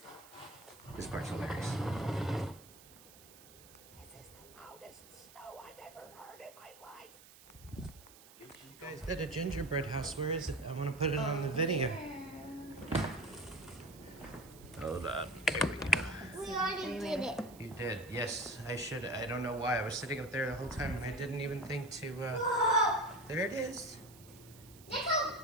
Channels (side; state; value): right; noise; hiss, 21 dB below the sound